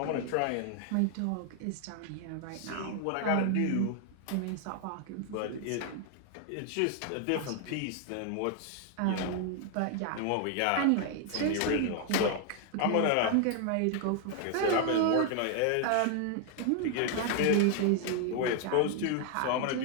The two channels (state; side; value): different; both; correlation 0.00